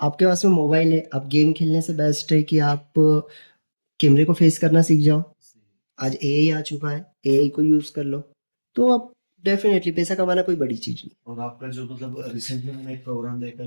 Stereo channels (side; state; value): both; inverted; correlation -1.00